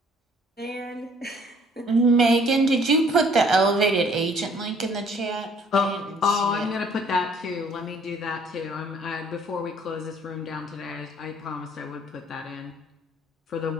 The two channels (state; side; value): normal; both; correlation 0.59